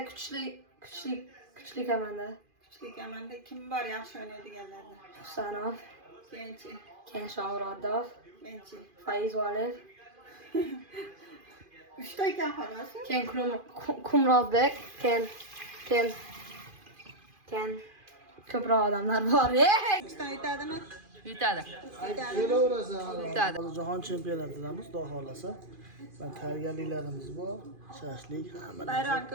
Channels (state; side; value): late; left; 2.5 ms